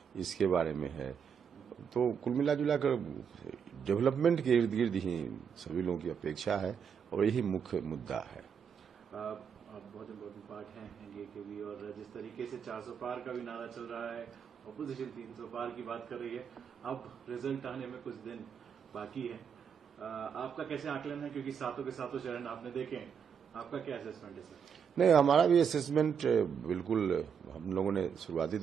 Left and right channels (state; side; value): quieter; left; 7.2 dB